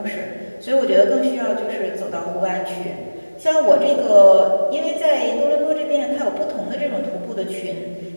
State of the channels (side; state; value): both; inverted; correlation -1.00